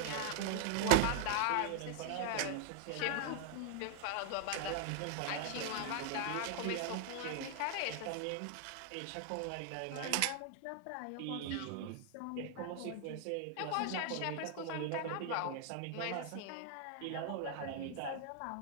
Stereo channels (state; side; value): different; both; correlation -0.01